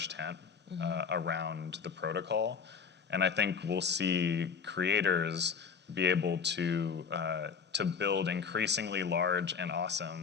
tent around the protocol, and I think we'll see creators be able to build increasingly large and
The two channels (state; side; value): quieter; right; 6.1 dB